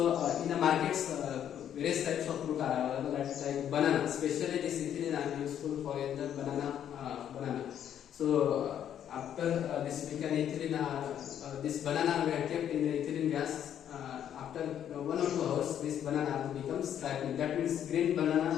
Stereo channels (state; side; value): quieter; right; 9.9 dB